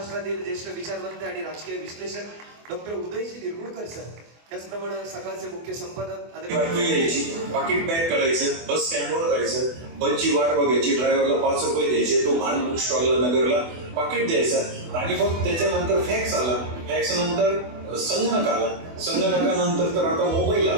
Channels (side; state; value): left; late; 24 ms